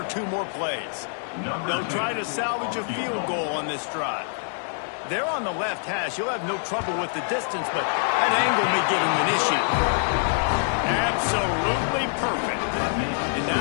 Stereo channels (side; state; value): right; silent; 62 dB below the other